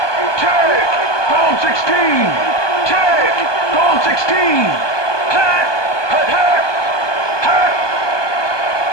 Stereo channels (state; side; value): late; right; 1.2 ms